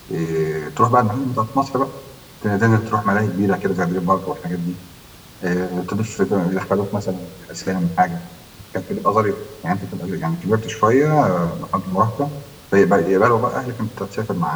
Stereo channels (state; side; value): identical; both; correlation 1.00